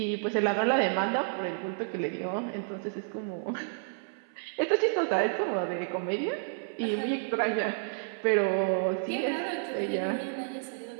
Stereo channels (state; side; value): silent; left; 58 dB below the other